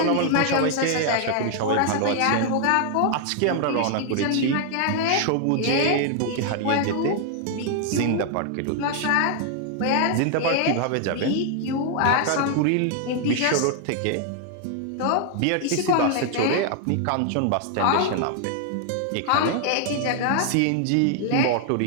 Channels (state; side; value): different; both; correlation 0.00